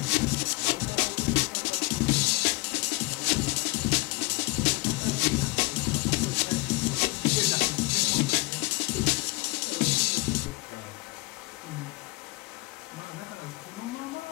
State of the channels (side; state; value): right; quieter; 24.1 dB